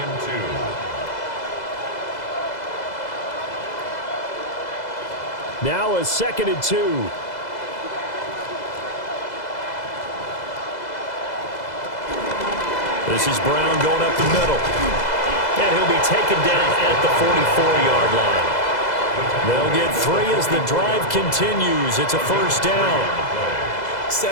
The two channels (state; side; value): late; right; 2.0 ms